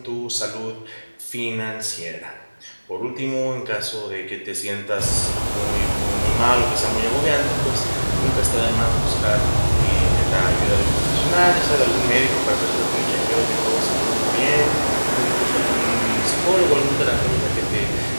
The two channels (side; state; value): both; inverted; correlation -1.00